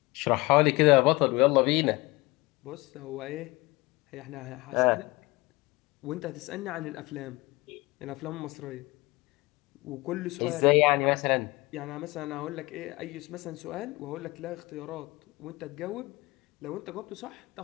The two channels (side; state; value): right; quieter; 22.7 dB